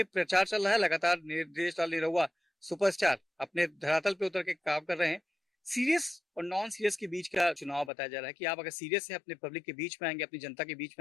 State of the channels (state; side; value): drops out; right; at 7.9 s